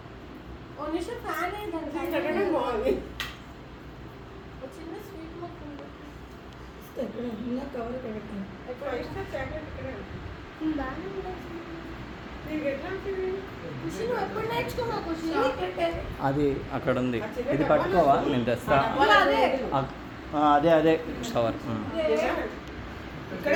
ఓ నిమిషం ఫ్యాన్ పెట్టడం బాగుంది. చిన్న స్వీట్ మొక్క ఉంది. ఇంకా కవర్ పెట్టాను. ఎక్కువ ఇష్టం చాక్లెట్ ఇక్కడ బాగానే నీకు ఎట్లా ఉంటుంది? ఖుషి నువ్వు ఎప్పుడు నేర్చుకున్నావు ఖుషి? అది అక్కడ ఉంది. ఇది పట్టుకోవా, నేను తెస్తా. అదే అదే కవర్.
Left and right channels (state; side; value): identical; both; correlation 1.00